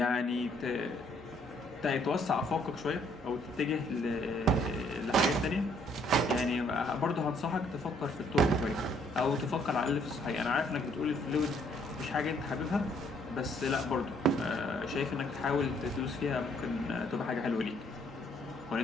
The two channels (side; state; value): both; normal; correlation 0.66